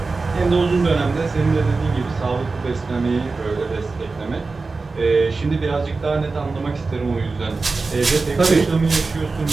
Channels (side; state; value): left; quieter; 3.9 dB